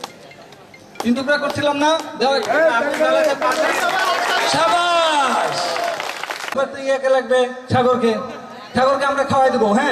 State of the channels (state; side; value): identical; both; correlation 1.00